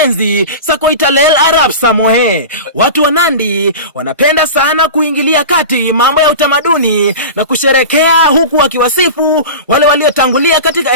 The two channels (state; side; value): inverted; both; correlation -0.30